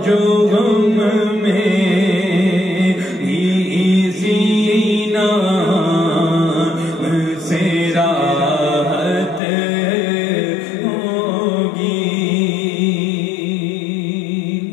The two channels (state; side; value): drops out; right; at 9.4 s